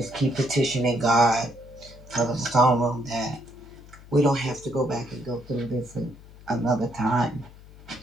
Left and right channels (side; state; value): left; noise; hum, 20 dB below the sound